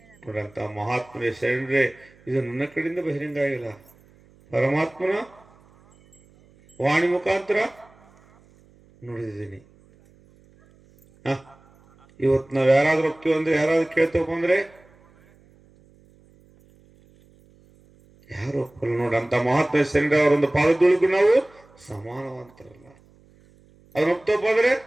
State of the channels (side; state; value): right; noise; hum, 29 dB below the sound